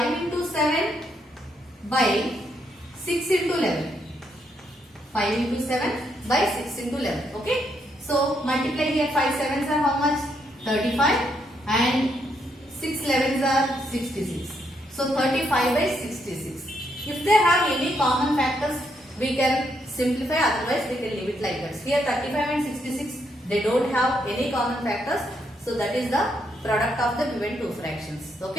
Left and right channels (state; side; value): normal; both; correlation 0.76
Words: into 7 by 6 into 11. 5 into 7 by 6 into 11. Okay. So multiply here, 5 sevens are how much? 35 and 6 11s are 66. So 35 by 66. If they have any common factors, we can simplify, otherwise we can leave it like that. Here 35 and 66, they don't have any common factors. So that is the product of the given two fractions.